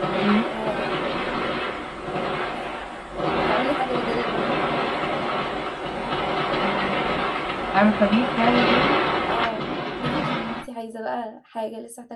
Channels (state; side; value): identical; both; correlation 1.00